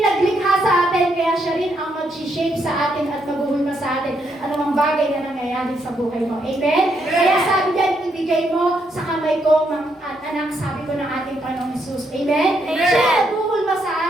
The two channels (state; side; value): normal; both; correlation 0.76